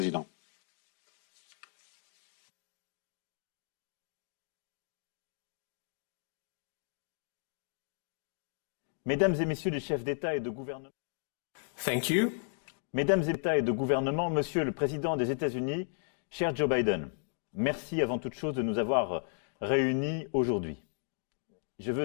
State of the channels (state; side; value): silent; right; 55 dB below the other